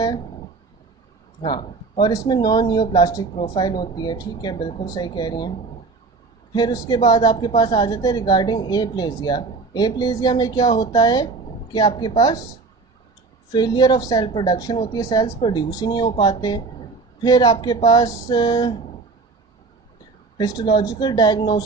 है, हाँ। और इसमें नॉन न्यूप्लास्टिक प्रोफाइल होती है, ठीक है, बिल्कुल सही कह रही हैं। फिर उसके बाद आपके पास आ जाता है रिगार्डिंग एप्लेजिया। एप्लेजिया में क्या होता है कि आपके पास फेलियर ऑफ सेल प्रोडक्शन होती है, सेल्स प्रोड्यूस ही नहीं हो पाते। फिर आपके पास histological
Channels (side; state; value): left; quieter; 4.1 dB